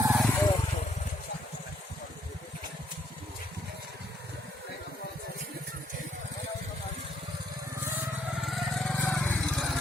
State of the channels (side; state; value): both; normal; correlation 0.71